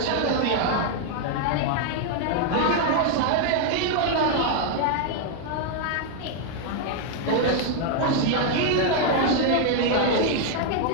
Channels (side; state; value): both; different; correlation 0.00